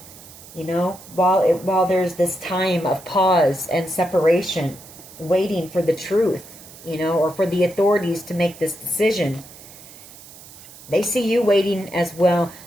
while there's this time of pause and separation, waiting for the truth, or for the authorities to make this decision. They see you waiting as well.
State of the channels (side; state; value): right; noise; hiss, 19 dB below the sound